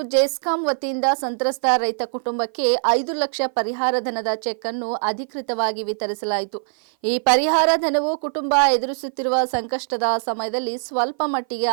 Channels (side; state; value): left; silent; 57 dB below the other